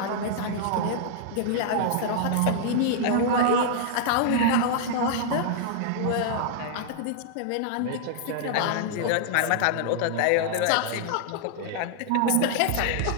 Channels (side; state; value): both; different; correlation -0.01